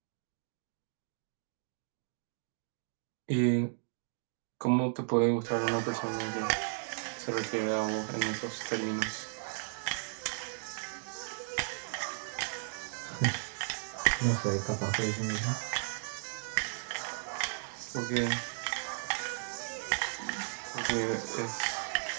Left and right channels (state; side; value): silent; left; digital silence